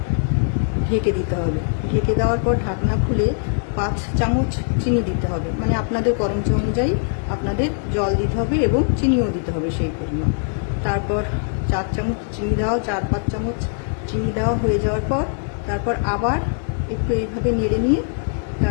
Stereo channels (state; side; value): silent; right; digital silence